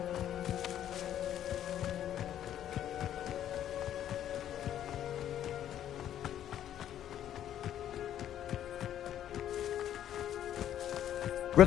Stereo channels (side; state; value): right; quieter; 10.9 dB